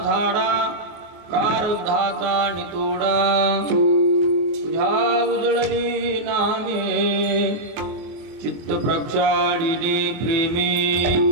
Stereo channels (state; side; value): late; left; 24 ms